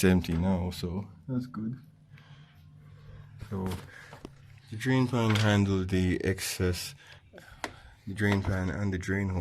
empty now, so that's good. So the drain pan handle the excess. The drain pan and the drain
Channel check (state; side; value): identical; both; correlation 1.00